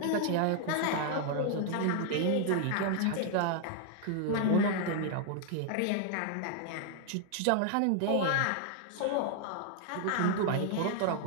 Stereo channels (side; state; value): both; different; correlation 0.00